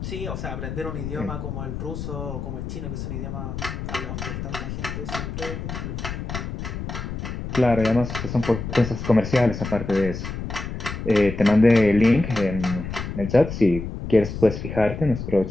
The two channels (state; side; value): noise; left; rumble, 6 dB below the sound